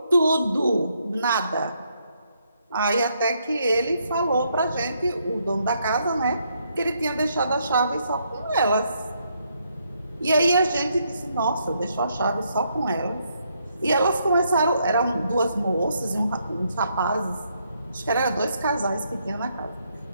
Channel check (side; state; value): both; inverted; correlation -0.75